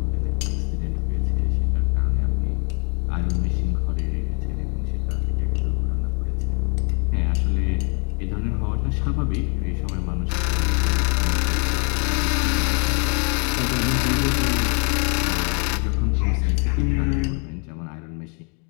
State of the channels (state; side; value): quieter; right; 37.5 dB